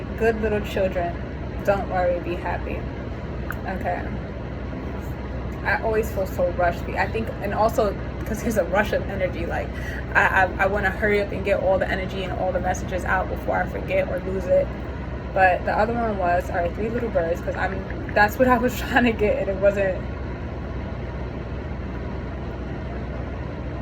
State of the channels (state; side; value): identical; both; correlation 1.00